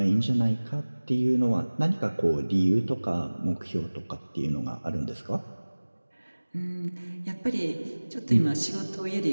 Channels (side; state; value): both; inverted; correlation -1.00